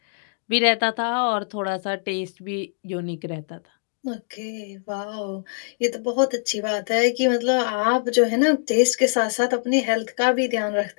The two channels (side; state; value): right; silent; digital silence